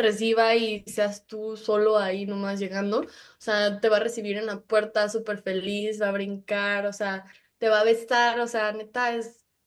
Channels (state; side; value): identical; both; correlation 1.00